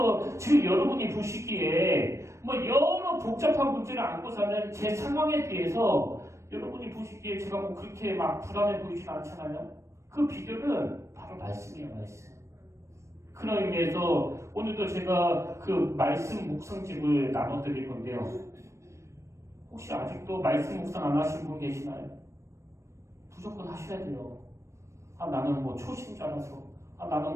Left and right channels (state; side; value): late; left; 0.14 ms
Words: 지금 여러분이 보시기에 뭐 여러 복잡한 문제를 안고 사는 제 상황에 비해서 여러분이 보시기에 제가 뭐 그렇게 막 불안해 보이진 않잖아요. 그 비결은 바로 말씀이에요, 말씀. 그런 의미에서 오늘도 제가 그 말씀 묵상집을 나눠드릴 건데요. 혹시 아직도 말씀 묵상 안 하신 분 계시나요? 무조건 하셔야 돼요. 나는 뭐 초심자라서, 나는